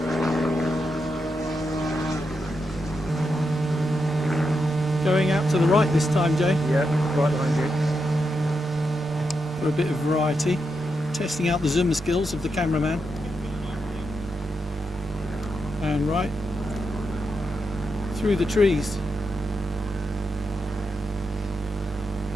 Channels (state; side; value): normal; both; correlation 0.85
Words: Going out to the right this time, Jay, Yeah, right behind you. for a bit of variety. Testing out the zoom skills of the cameraman. And right through the trees.